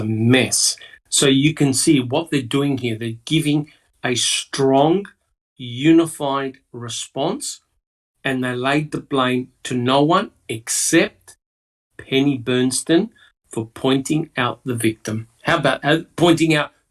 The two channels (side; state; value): both; identical; correlation 1.00